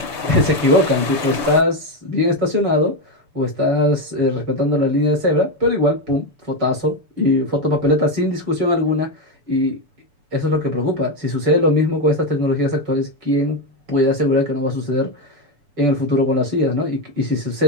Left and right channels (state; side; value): late; left; 6.9 ms